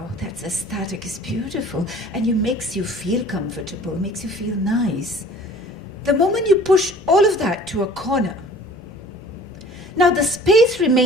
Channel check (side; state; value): both; normal; correlation 0.48